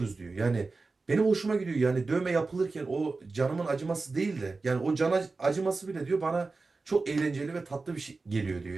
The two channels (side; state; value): left; quieter; 3.8 dB